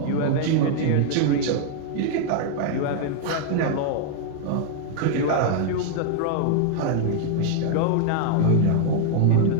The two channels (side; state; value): both; different; correlation -0.01